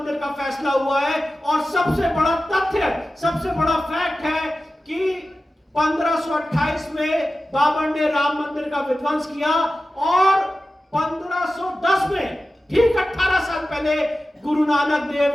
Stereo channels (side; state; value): both; normal; correlation 0.94